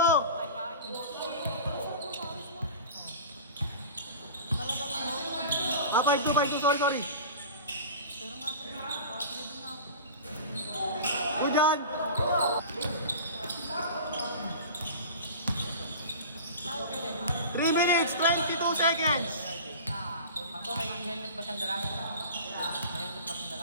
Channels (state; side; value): inverted; both; correlation -0.36